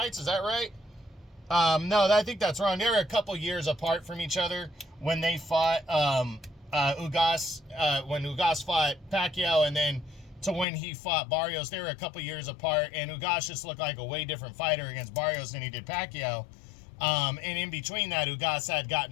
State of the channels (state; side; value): drops out; right; at 10.7 s